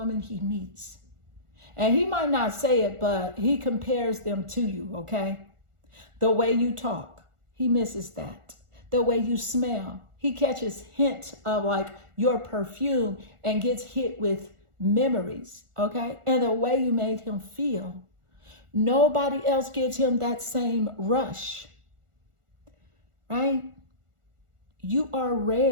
he meets. And he might not say it, but he compares them to you, okay? The way you talk, he misses that. The way you smell, he catches hints of like your perfume and gets hit with memories, okay? And the way you made him feel. Nobody else gives him that same rush, right? You are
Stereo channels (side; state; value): left; late; 1.4 ms